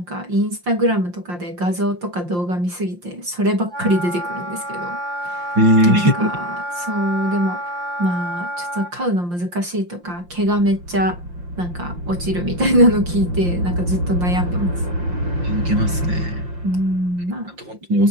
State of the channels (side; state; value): left; late; 5.7 ms